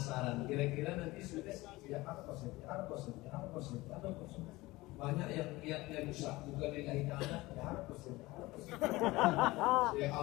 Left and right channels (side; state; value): right; quieter; 20.2 dB